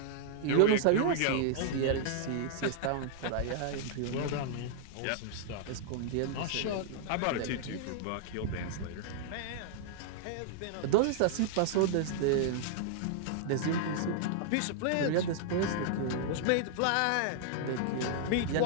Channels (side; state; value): both; different; correlation -0.01